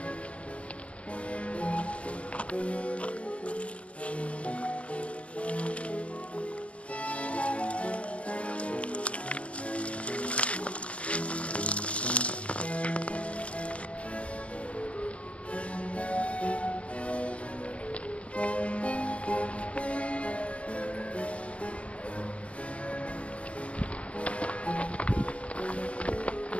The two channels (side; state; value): right; late; 0.062 ms